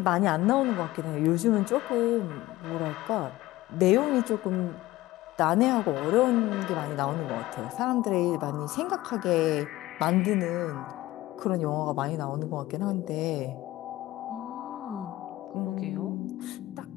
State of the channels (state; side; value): quieter; right; 17.2 dB